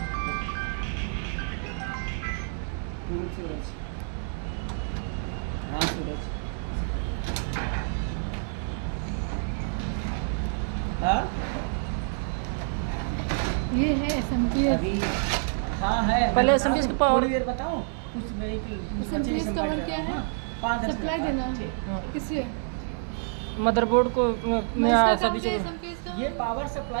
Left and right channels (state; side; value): silent; left; digital silence